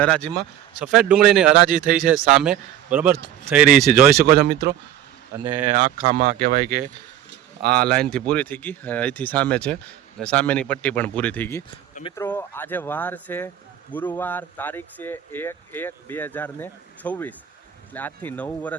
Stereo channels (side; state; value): left; quieter; 11.4 dB